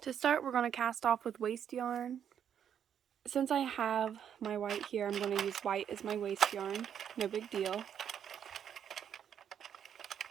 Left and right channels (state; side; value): quieter; left; 8.8 dB